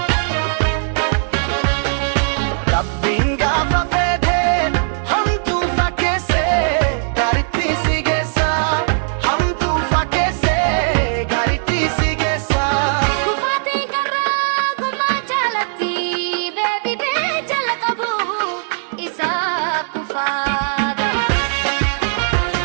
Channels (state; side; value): silent; left; 67 dB below the other